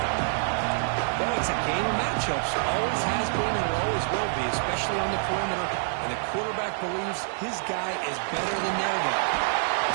Well, it's a game of matchups. Always has been and always will be, especially on the perimeter. And the quarterback believes his guy is better than their guy.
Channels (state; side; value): silent; left; digital silence